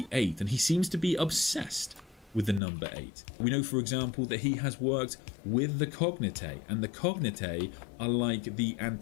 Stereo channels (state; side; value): drops out; right; at 2.6 s